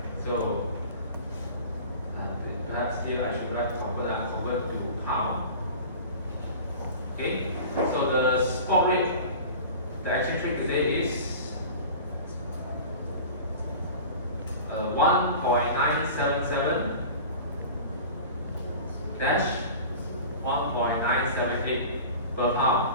So perhaps here I should write convert to pound. Okay. So the spot rate, the exchange rate today is 1.977 dash 1.978 per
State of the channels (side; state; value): both; inverted; correlation -0.38